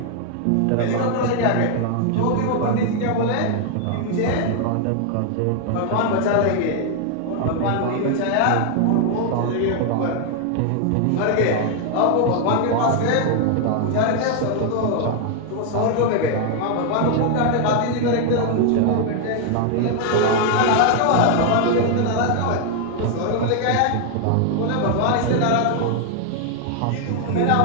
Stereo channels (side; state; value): both; different; correlation 0.00